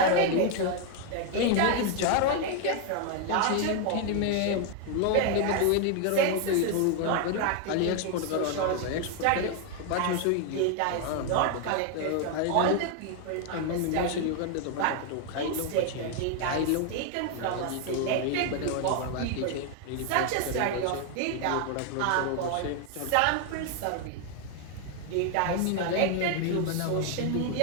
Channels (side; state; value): both; different; correlation 0.00